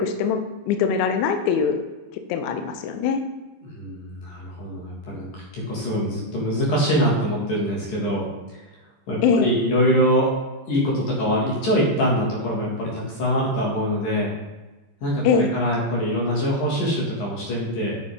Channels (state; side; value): late; right; 12 ms